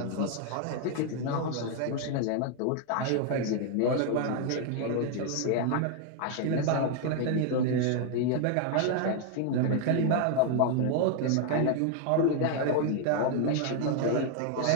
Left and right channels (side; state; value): both; different; correlation 0.00